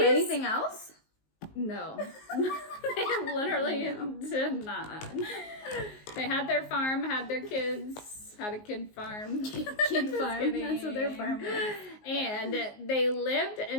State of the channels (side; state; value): right; late; 19 ms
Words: anything else? No. They literally did not. They had their farm, had their kids, had a kid farm. Kid farm. That's what their farm was. And they lived